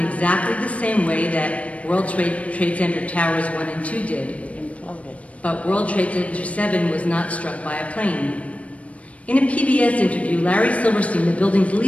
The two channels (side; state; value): right; late; 0.065 ms